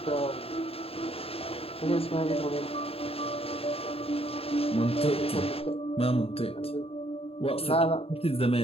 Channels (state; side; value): late; right; 0.28 ms